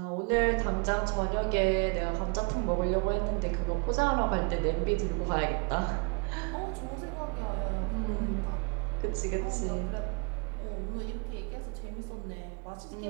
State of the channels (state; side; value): quieter; left; 30.8 dB